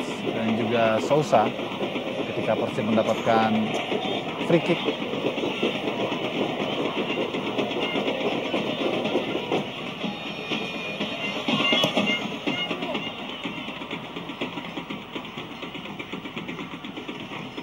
dan juga Souza ketika Persib mendapatkan free kick.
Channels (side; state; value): left; noise; hum, 29 dB below the sound